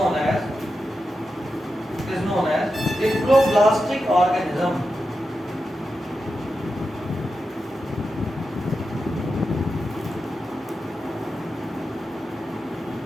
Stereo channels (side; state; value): both; normal; correlation 0.90